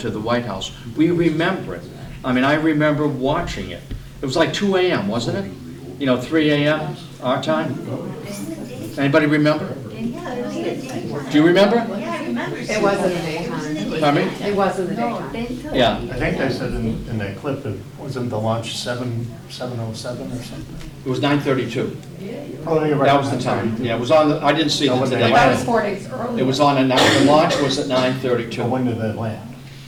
the White House. We remember it. I remember watching it. It was like 2 a.m., wasn't it? 3 a.m. our time. Anybody remember? Do you remember? It was in the daytime. Pardon me? It was in the daytime. Yeah. I think they said in that clip, it wasn't the launch 7:07 or something? It was 9:32. Oh, you're right. That was the time. Yeah, it was on I didn't see it today. That was 4 days earlier. It was on, the launch was at So 9:32. when did they land?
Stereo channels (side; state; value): both; identical; correlation 1.00